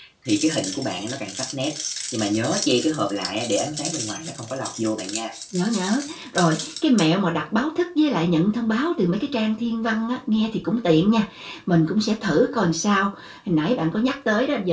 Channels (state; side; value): identical; both; correlation 1.00